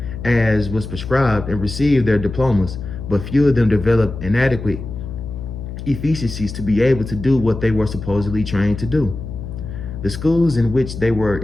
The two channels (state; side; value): noise; left; hum, 9 dB below the sound